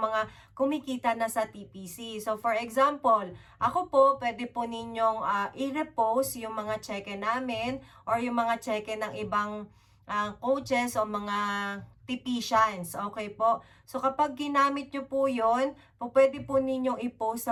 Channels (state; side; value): identical; both; correlation 1.00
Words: kumikita na sa TPC. So, for example, ako po, pwede po ninyong i-repost yung mga cheque namin or yung mga cheque ng ibang coaches o mga tipicians. Okay po? So, kapag ginamit nyo po yun, pwede po ninyong i-post